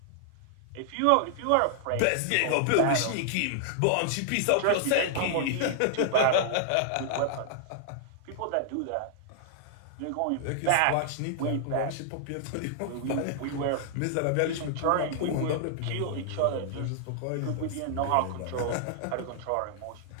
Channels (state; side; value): different; both; correlation -0.01